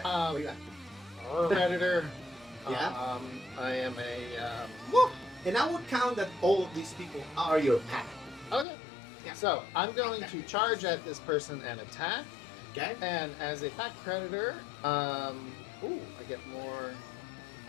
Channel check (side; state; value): right; drops out; at 8.7 s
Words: Um, What do you got? Predator. Yeah? I am a. Woo! And I would count that all of these people are your pack. Okay. Yeah. So I'm going to charge at this person and attack. Okay. And as a pack predator, I get more.